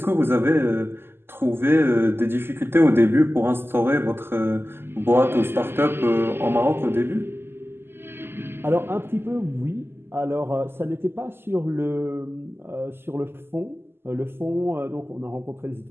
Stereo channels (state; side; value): late; left; 0.11 ms